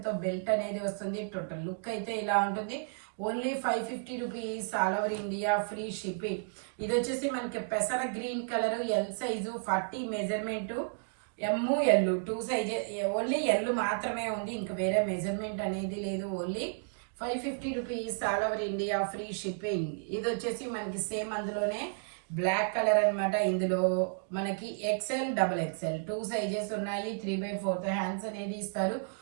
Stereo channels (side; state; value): left; silent; digital silence